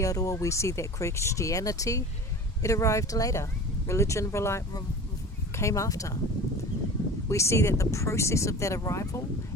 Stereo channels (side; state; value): both; normal; correlation 0.36